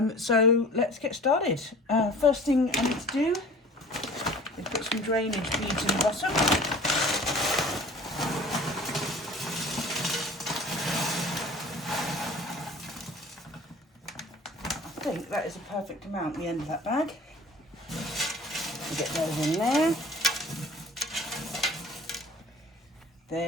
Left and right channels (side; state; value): both; normal; correlation 0.45